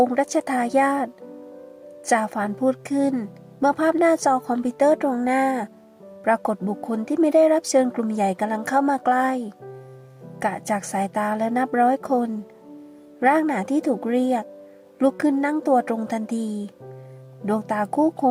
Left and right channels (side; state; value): both; identical; correlation 1.00